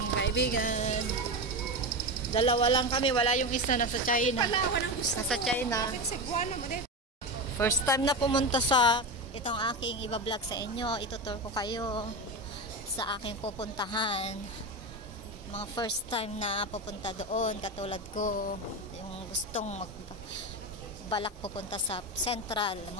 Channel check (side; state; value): both; normal; correlation 0.18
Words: kaibigan. Dalawa lang kami, wala yung isa nasa China. Nasa China. First time na pumunta sa itong aking iba-vlog sa inyo. Itutur ko kayo sa aking pupuntahan. Mga first time na pupunta doon, katulad ko, yung gustong balak pupunta sa Central,